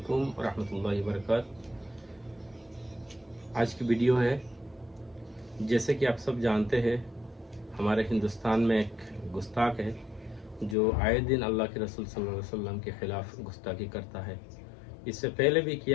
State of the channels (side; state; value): right; drops out; at 10.8 s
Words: व रहमतुल्लाहि व बरकातुहू। आज की वीडियो है, जैसे कि आप सब जानते हैं, हमारे हिंदुस्तान में एक गुस्ताख है जो आए दिन अल्लाह के रसूल सल्लल्लाहु अलैहि वसल्लम के ख़िलाफ़ गुस्ताखी करता है। इससे पहले भी